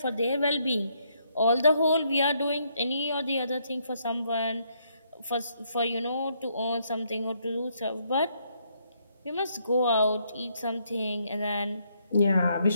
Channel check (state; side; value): inverted; both; correlation -0.73